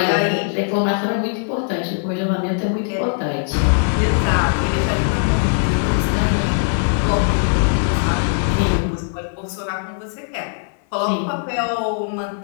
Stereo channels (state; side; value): silent; right; 56 dB below the other